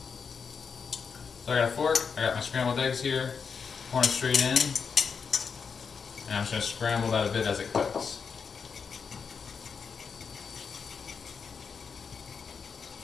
So I got a fork, I got my scrambled eggs here, pouring straight in. And I'm just going to scramble that a bit as it cooks.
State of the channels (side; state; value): right; quieter; 5.9 dB